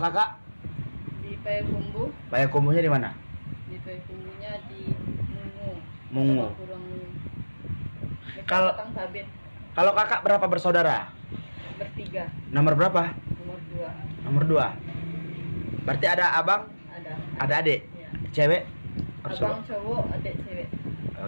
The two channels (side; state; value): both; inverted; correlation -1.00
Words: Di Payakumbuh, Payakumbuhnya di mana? di Payakumbuhnya di Mungu. Mungu. Kurang Mungu. Kalau- Kang Sabit Kalau kakak berapa bersaudara? bertiga, Nomor berapa? nomor 2 Nomor 2. Berarti ada abang, ada. ada adik, Ya. cewek, Abang cowok, adik cewek.